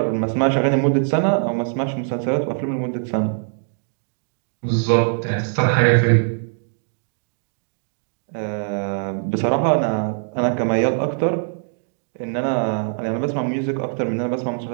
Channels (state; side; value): silent; left; 64 dB below the other